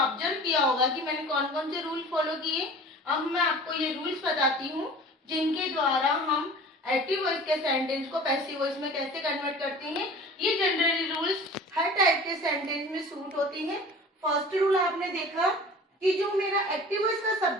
किया होगा कि मैंने कौन कौन से रूल फॉलो किए। अब मैं आपको ये रूल्स बताती हूँ जिनके द्वारा हम एक्टिव वॉइस के सेंटेंस को पैसिव वॉइस में कैसे कन्वर्ट करते हैं। ये जनरली रूल्स हर टाइप के सेंटेंस में सूट होती हैं। फर्स्ट रूल आपने देखा कि जो मेरा एक्टिव वॉइस का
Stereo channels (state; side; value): normal; both; correlation 0.42